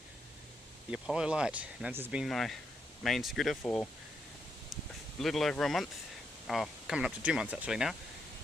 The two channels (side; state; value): both; normal; correlation 0.80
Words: the Apollo Light. Now this has been my main scooter for a little over a month, coming up to 2 months actually now,